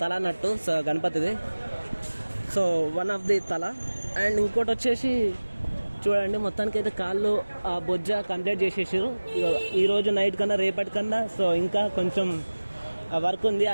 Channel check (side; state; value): both; inverted; correlation -1.00